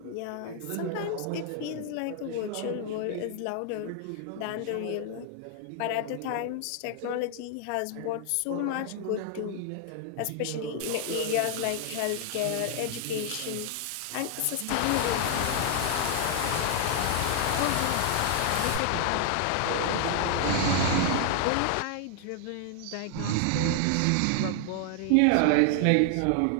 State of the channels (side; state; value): both; different; correlation 0.00